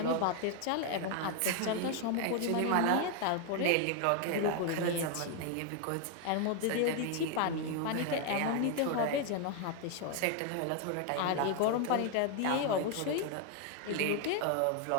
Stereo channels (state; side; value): different; both; correlation 0.00